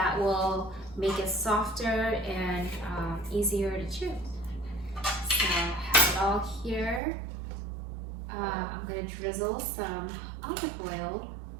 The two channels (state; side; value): drops out; left; at 7.0 s